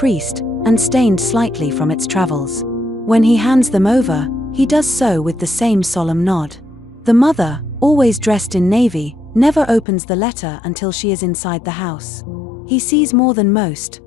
and stained slightly from its travels. When he hands them over, he does so with the same solemn nod. The mother, always dressed in navy, never opens the letter until she is inside the house. He sees more than most,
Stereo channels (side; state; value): right; drops out; at 9.9 s